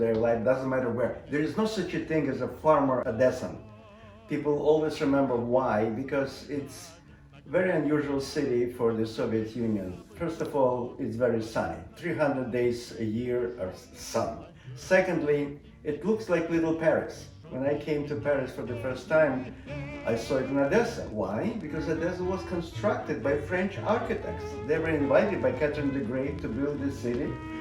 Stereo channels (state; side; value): identical; both; correlation 1.00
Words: their life, doesn't matter where. There is no such a thing as a farmer Odessan. People always remember why, because it's a very unusual city for the Soviet Union. First of all, it's very sunny. 300 days a year are sun. Secondly, it looks like little Paris. When I came to Paris for the first time, I saw it in Odessa. Why? Because Odessa was constructed by French architects. They were invited by Catherine the Great to build this city,